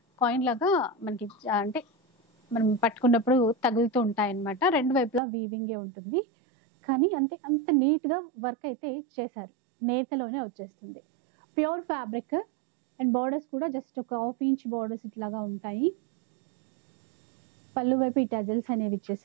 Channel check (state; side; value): drops out; left; at 5.2 s